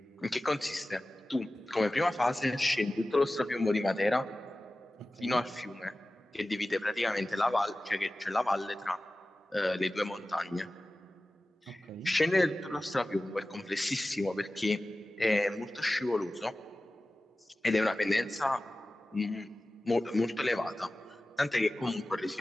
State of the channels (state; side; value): normal; both; correlation 0.96